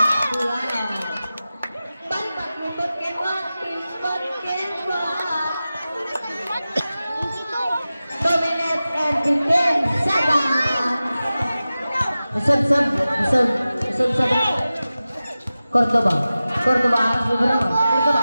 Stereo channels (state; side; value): inverted; both; correlation -0.95